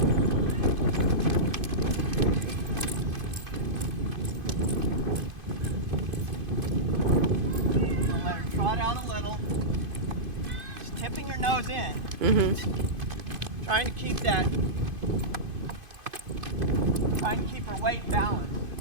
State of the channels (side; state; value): left; late; 2.5 ms